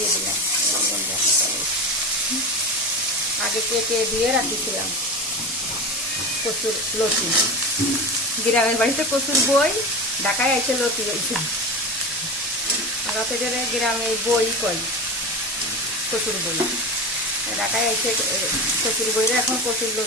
দিলাম। আগে কেটে দিয়ে রাখিছিলাম কচুর লতি। গ্রামের বাড়িতে কচুর বই, ঢাকায় আইসে লতি হয়েছে। রাতে গ্রামে বই কই কচুর বই, ঢাকায় আইসে কচুর বইরে এখন কচুর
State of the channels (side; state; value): both; normal; correlation 0.25